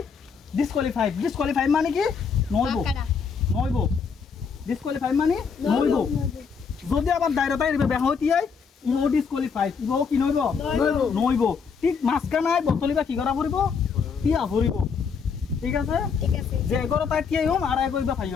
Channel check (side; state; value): right; quieter; 5.9 dB